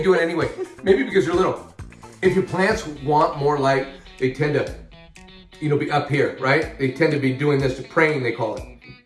do it anyway. Maybe because they're little. If your plants want more light, they tend to, you know, be up here, right? They tend to be doing this, praying, they call it.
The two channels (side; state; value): both; identical; correlation 1.00